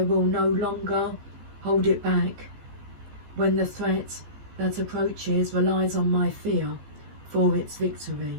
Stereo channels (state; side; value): late; left; 15 ms